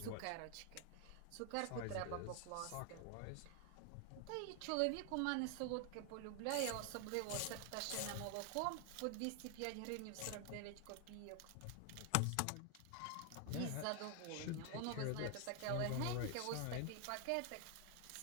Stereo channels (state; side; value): different; both; correlation 0.00